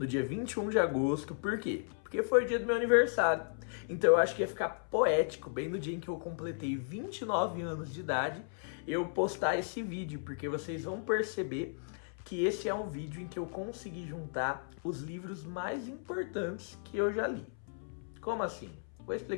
dia 21 de agosto. Por quê? Porque foi o dia do meu aniversário. Então eu acho que ia ficar poético, bem no dia em que eu completei 29 anos de idade, eu postar esse vídeo, porque vocês vão perceber que esse é um vídeo em que eu consegui juntar os livros mais importantes que eu já li. Como assim? Vou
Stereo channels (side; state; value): right; silent; 55 dB below the other